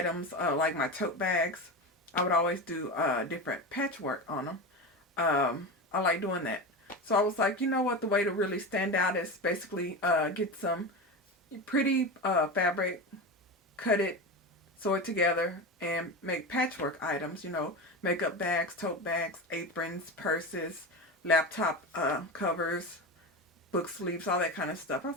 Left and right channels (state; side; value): normal; both; correlation 0.23